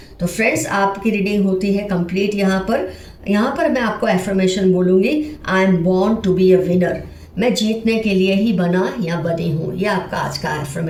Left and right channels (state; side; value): identical; both; correlation 1.00